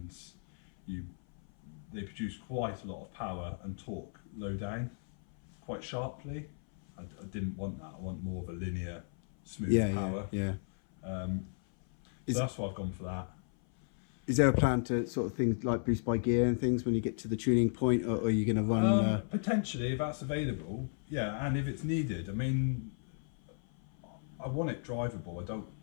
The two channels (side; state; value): right; silent; 55 dB below the other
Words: they produce quite a lot of power and torque low down quite sharply. I didn't want that. I want more of a linear, smooth power. So that's why I've gone for that. Is there a plan to sort of things like boost by gear and things when you get to the tuning point, or are you going to run? Potentially, if that's available, yeah, and if it's needed. I mean, I want it drivable. I don't,